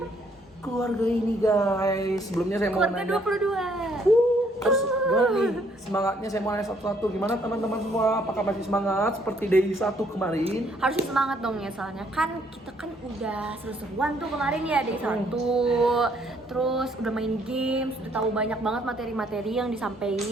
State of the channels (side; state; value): both; normal; correlation 0.67